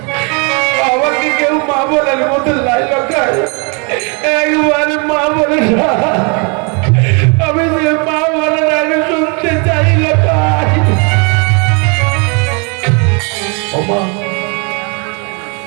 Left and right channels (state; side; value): quieter; left; 34.1 dB